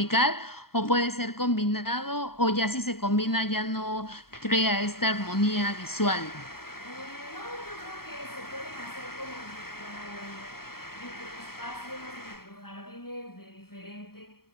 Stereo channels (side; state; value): right; late; 0.94 ms